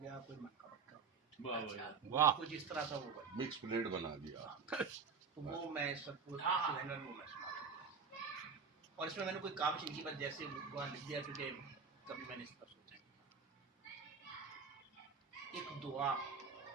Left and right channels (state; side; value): quieter; left; 5.5 dB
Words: کوئی منقبت کا ہو گیا, کچھ اس طرح کا وہ مکس پلیٹ بنا دیا. تو وہ میں سب کو میں سنا اور اس میں نے کوئی کاوش نہیں کی, بس جیسے وہاں لکھ دیا کیونکہ کبھی میں نے اس پر سوچا. ایک دعا